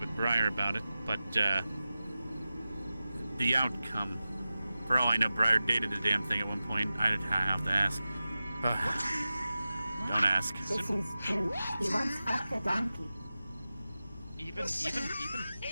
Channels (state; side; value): inverted; both; correlation -0.94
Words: Briar about it. But the outcome, for all I know, Briar dated the damn thing at one point. I'd have to ask. Don't ask. This is true. He once fucked a donkey. Even